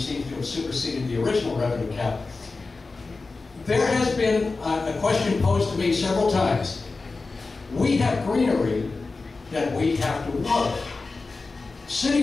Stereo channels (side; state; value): right; quieter; 3.8 dB